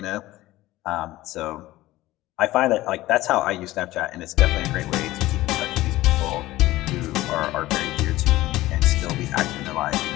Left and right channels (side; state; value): right; quieter; 17.1 dB